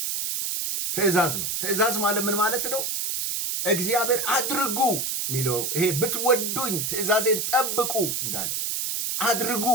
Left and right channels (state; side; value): noise; right; hiss, 1 dB below the sound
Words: ትእዛዝ ማለት ምን ማለት ነው? እግዚአብሔር አድርጉ የሚለው ይሄ ብትወዱኝ ትእዛዜን ጠብቁ እንዳለ አድርጉ